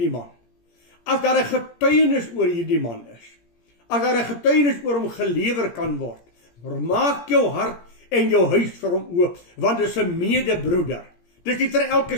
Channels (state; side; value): late; right; 17 ms